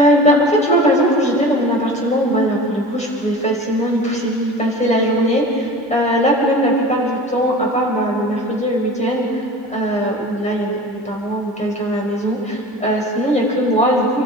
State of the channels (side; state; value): both; normal; correlation 0.37